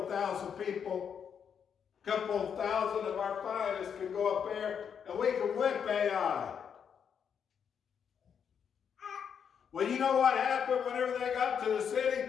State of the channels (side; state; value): right; quieter; 7.5 dB